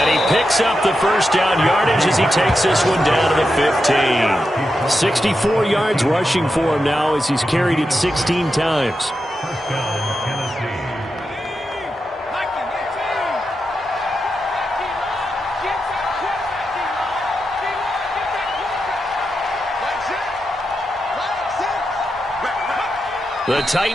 he picks up the 1st down yardage as he takes this one down to the 15. 64 yards rushing for him now as he's carried it 16 times. The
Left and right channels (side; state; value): both; normal; correlation 0.88